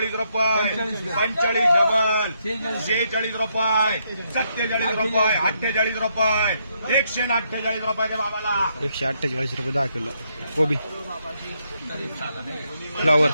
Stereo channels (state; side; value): inverted; both; correlation -0.77